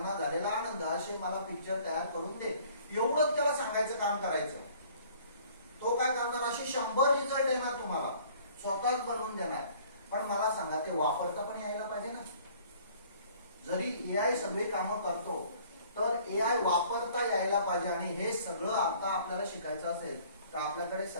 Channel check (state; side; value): inverted; both; correlation -0.54